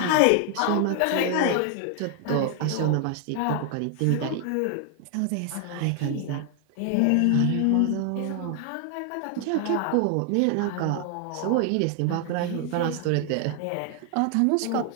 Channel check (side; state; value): both; different; correlation 0.00